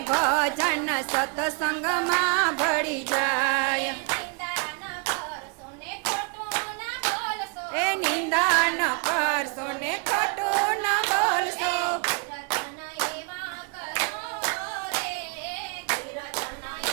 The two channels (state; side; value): quieter; left; 33.5 dB